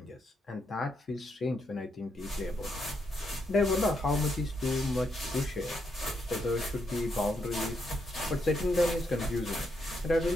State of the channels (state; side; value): normal; both; correlation 0.79